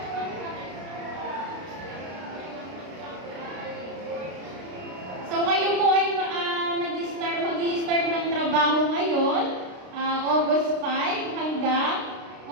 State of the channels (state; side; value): late; left; 32 ms